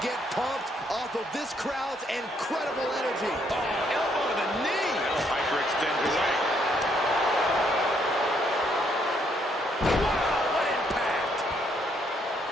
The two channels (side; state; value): both; normal; correlation 0.71